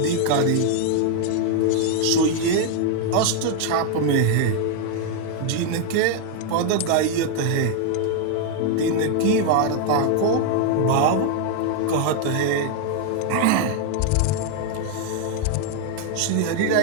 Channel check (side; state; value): both; different; correlation 0.00